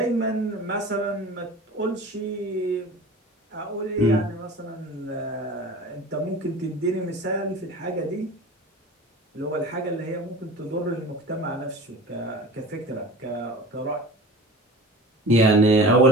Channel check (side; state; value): both; normal; correlation 0.39